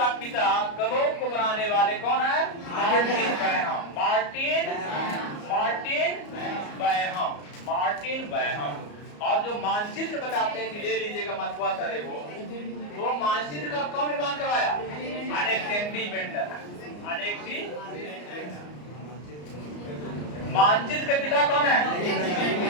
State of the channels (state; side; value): late; right; 34 ms